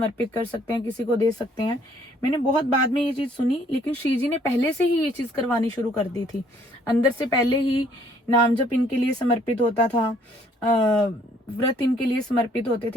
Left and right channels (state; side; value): normal; both; correlation 0.63